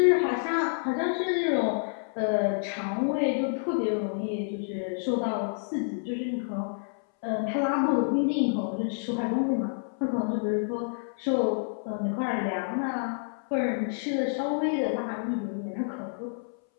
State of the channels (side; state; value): right; silent; 59 dB below the other